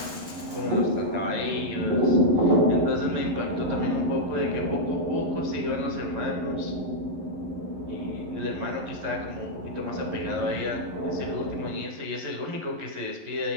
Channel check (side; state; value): left; late; 11 ms